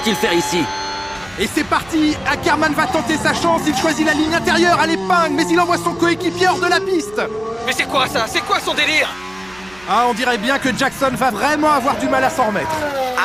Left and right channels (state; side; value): noise; right; hum, 24 dB below the sound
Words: faire ici ? Et c'est parti, Ackerman va tenter sa chance, il choisit la ligne intérieure à l'épingle, mais il envoie son coéquipier hors de la piste. Mais c'est quoi ça? C'est quoi son délire? Ah, on dirait bien que Jackson va vraiment avoir du mal à s'en remettre.